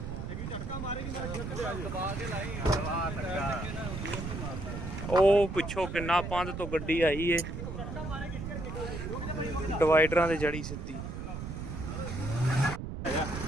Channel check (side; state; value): right; noise; rumble, 6 dB below the sound